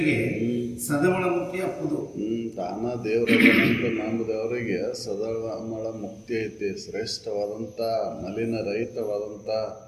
ಸದಮಳ ಮುಕ್ತಿ ಅಪ್ಪುದು. ತಾನ ದೇವರಂತ ನಂಬಿದವರಿಗೆ ಸದಮಳ ಮುಕ್ತಿ ಐತಿ, ಶ್ರೇಷ್ಠವಾದಂಥ ಮಲಿನ ರಹಿತವಾದಂಥ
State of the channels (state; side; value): identical; both; correlation 1.00